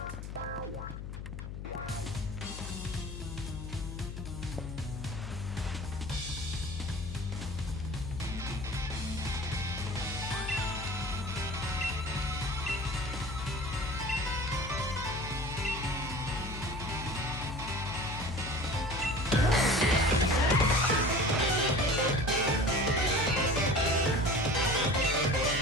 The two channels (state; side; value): noise; left; hum, 8 dB below the sound